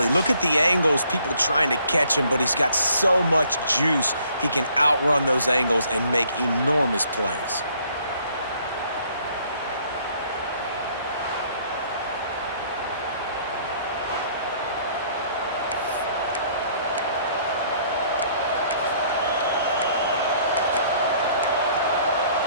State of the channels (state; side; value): inverted; both; correlation -0.62